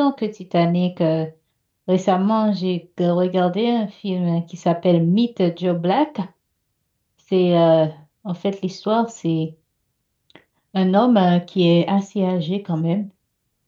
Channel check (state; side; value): identical; both; correlation 1.00